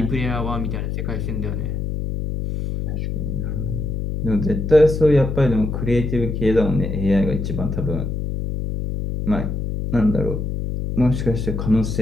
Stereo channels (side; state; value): left; noise; hum, 3 dB below the sound